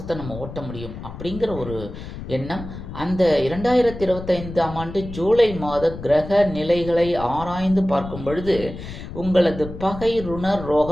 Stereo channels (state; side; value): noise; left; rumble, 11 dB below the sound